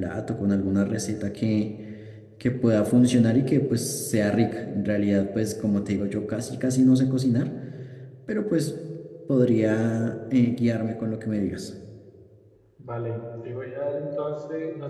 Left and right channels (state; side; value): identical; both; correlation 1.00